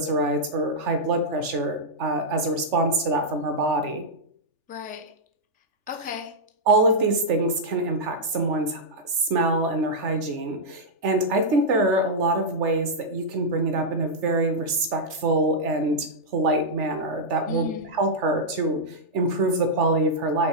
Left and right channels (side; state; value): left; late; 3.4 ms